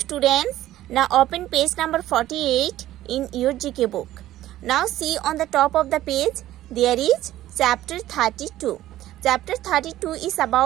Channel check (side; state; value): left; quieter; 14.2 dB